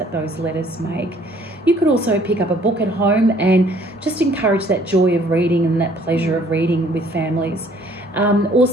those letters make. You could also pick up a book at home and just encourage that joy of reading and that pleasure of reading with families.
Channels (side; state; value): both; normal; correlation 0.59